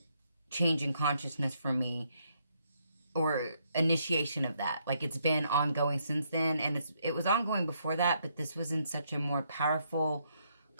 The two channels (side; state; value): both; inverted; correlation -0.74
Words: change in consciousness for me, or initiation of that. Like, it's been ongoing since then, and it was ongoing before that, but this was in such a more powerful,